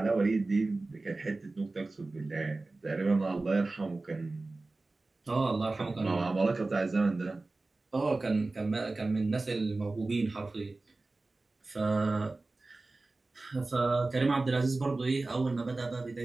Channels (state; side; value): quieter; left; 3.3 dB